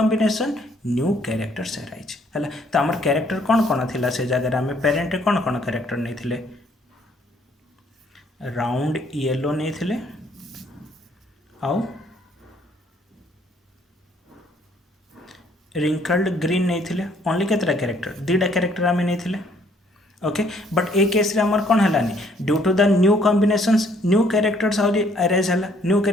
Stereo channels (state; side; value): normal; both; correlation 0.64